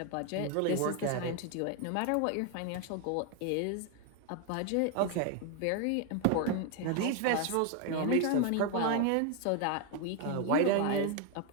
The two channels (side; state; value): both; different; correlation 0.01